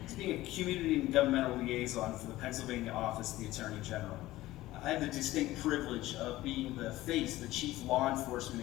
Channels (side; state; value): right; quieter; 16.7 dB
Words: as being a community and governmental liaison for the Pennsylvania Office of the Attorney General. I have the distinct privilege of being the face, the chief law